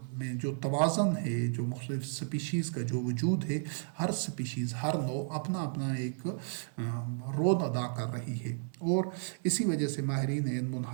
میں جو توازن ہے، جو مختلف سپیشیز کا جو وجود ہے، ہر سپیشیز، ہر نوع اپنا اپنا ایک رول ادا کر رہی ہے، اور اسی وجہ سے ماہرین علم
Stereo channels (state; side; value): silent; left; 56 dB below the other